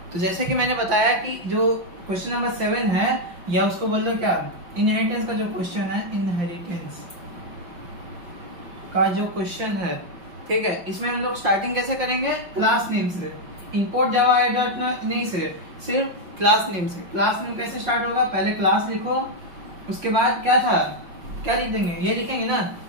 तो जैसे कि मैंने बताया कि जो क्वेश्चन नंबर 7 है, या उसको बोल दो क्या, इनहेरिटेंस का जो क्वेश्चन है, इनहेरिटेंस का जो क्वेश्चन है, ठीक है, इसमें हम लोग स्टार्टिंग कैसे करेंगे, क्लास नेम से। इंपोर्ट जावा नहीं से, सिर्फ क्लास नेम से। क्लास नेम कैसे स्टार्ट होगा, पहले क्लास लिखो, उसके बाद क्या था, क्या लिख देंगे, ये लिखेंगे ना,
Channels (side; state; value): left; late; 5.6 ms